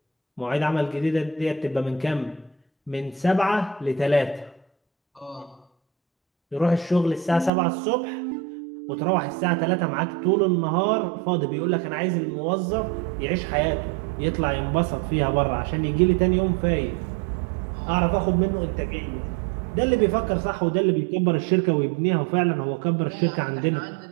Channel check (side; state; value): left; drops out; at 7.5 s